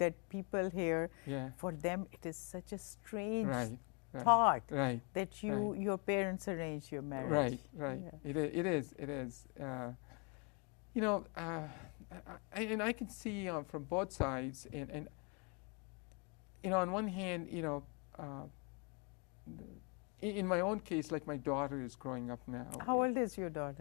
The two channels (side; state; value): right; quieter; 34.2 dB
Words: people hear. Yeah. For them, it is such a strange Right. thought Right. that Right. your parents arranged your marriage. Right. Right. Yeah. It is. And I can see from both sides, and on one hand, in my own case, like my daughter is growing up now. How old is your